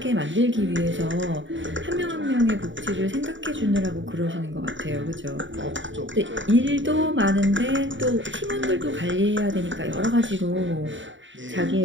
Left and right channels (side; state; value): left; late; 0.55 ms